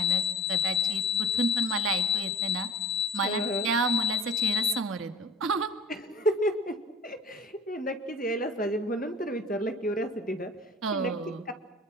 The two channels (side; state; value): both; normal; correlation 0.40